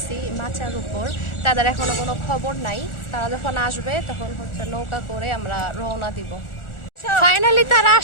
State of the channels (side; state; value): right; late; 1.4 ms